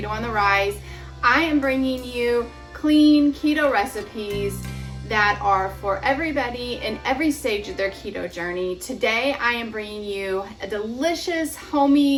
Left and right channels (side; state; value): both; identical; correlation 1.00